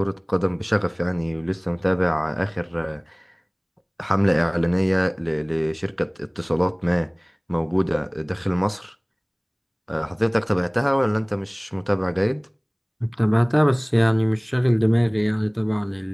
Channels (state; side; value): identical; both; correlation 1.00